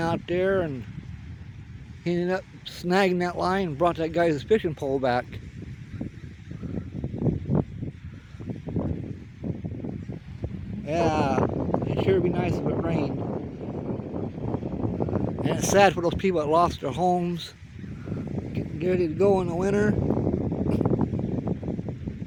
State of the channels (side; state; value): both; identical; correlation 1.00